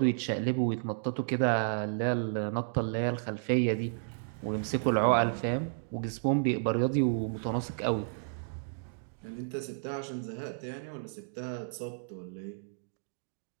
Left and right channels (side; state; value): left; silent; digital silence